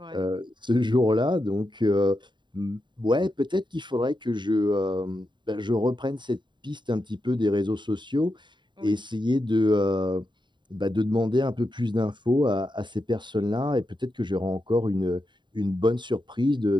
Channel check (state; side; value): late; left; 0.23 ms